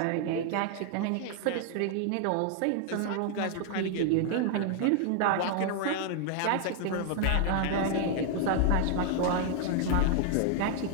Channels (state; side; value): different; both; correlation 0.00